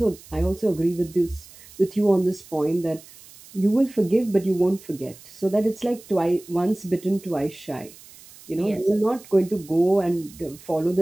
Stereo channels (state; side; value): noise; right; hiss, 21 dB below the sound